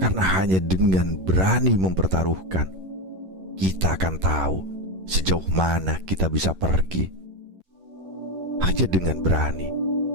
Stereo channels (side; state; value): left; late; 11 ms